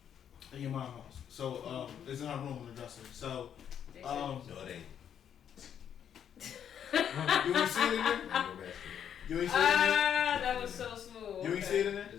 In your mom's house. So it's in her room in the dresser. So No, it ain't. you ain't see it in there? You ain't see it in there? That was so smooth. You ain't see it in there?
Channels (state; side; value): quieter; right; 8.9 dB